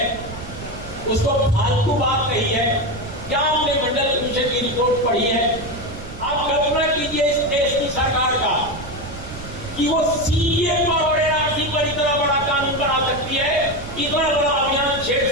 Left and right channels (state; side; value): noise; right; rumble, 13 dB below the sound